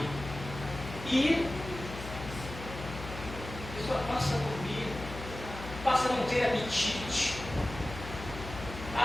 E a pessoa passa a dormir, passa a não ter apetite,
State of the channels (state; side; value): noise; left; hum, 10 dB below the sound